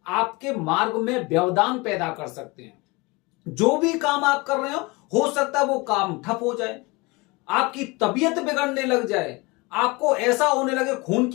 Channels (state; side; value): quieter; right; 25.0 dB